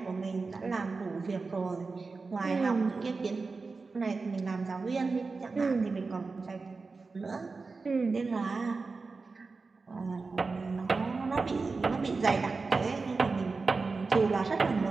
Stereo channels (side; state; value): left; quieter; 4.2 dB